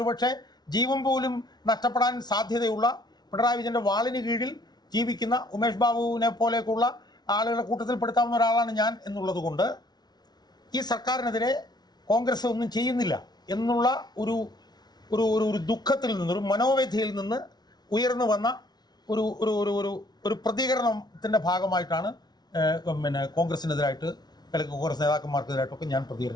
ജീവൻ പോലും നഷ്ടപ്പെടാൻ സാധ്യതയുള്ള പിണറായി വിജയൻ്റെ വാളിന് കീഴിൽ ജീവിക്കുന്ന ഉമേഷ് ബാബുവിനെ പോലെയൊക്കെയുള്ള ആളുകളെ കൂട്ടത്തിൽപ്പെടുത്താവുന്ന ഒരാളാണ് ഞാൻ എന്നുള്ളത് കൊണ്ട് ഈ സർക്കാരിനെതിരെ കോൺഗ്രസ് ഒന്നും ചെയ്യുന്നില്ല എന്നുള്ള ഒരു ഒരു ഒരു ദുഃഖത്തിൽ നിന്ന്, ഒരു മനോവേദനയിൽ നിന്ന് ഉയർന്നു വന്ന ഒരു ഒരു ഒരു ഒരു പ്രതികരണത്തിൻ്റെ ഭാഗമായിട്ടാണ് കോൺഗ്രസിനെതിരായിട്ട് അല്ലെങ്കിൽ കോൺഗ്രസ് നേതാക്കന്മാർക്കെതിരായിട്ടൊക്കെ ഞാൻ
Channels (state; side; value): late; right; 0.19 ms